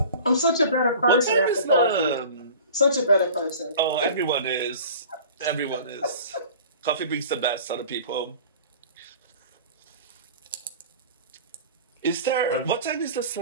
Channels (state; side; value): inverted; both; correlation -0.41